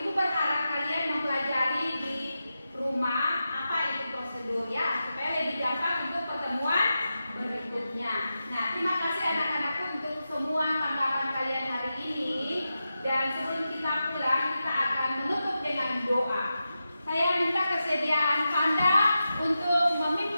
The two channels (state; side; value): inverted; both; correlation -0.90